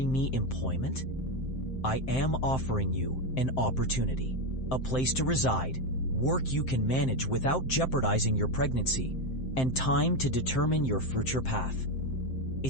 me employment?" "I am offering you an opportunity, a place to reside, work you can manage without jeopardizing your pregnancy, and time to determine your future path."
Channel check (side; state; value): right; late; 7.7 ms